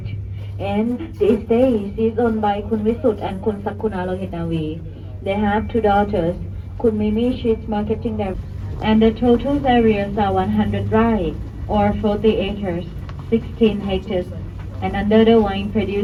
and these days is owned by Kun Visut and Kun Sakuna Lohitavi. They have 2 daughters. Kun Mimi, she's marketing them. And the total areas are 100 rai, or 40 acres, 16 hectares, and under the wine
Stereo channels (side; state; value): both; identical; correlation 1.00